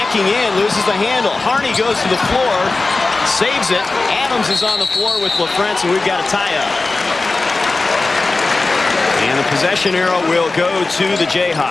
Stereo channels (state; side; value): quieter; right; 3.5 dB